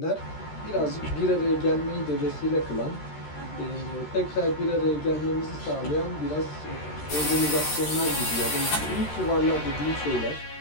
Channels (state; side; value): late; right; 13 ms